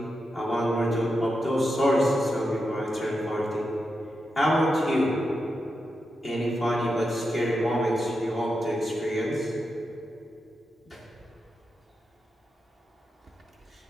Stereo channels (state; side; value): normal; both; correlation 0.87